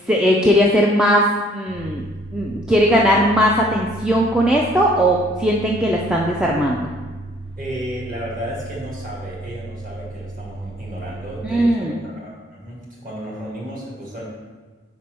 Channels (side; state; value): both; normal; correlation 0.60